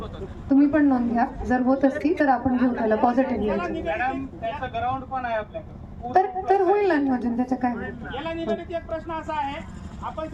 तुम्ही पण नोंद घ्या. जर होत असती तर आपण घेऊ त्याला पॉझिटिव्ह. मॅडम त्याचं ग्राउंड पण आहे आपल्याकडे, तर होईल ना नियोजन, त्याचं काय. याला निगडीत एक प्रश्न असा आहे, आपण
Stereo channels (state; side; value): identical; both; correlation 1.00